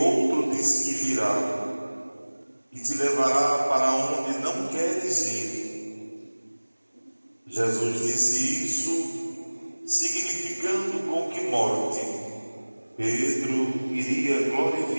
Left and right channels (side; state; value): both; inverted; correlation -1.00